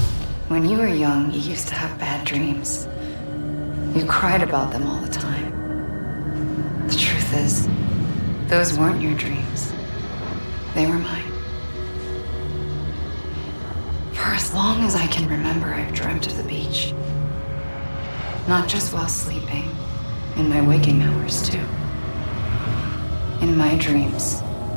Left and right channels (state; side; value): inverted; both; correlation -1.00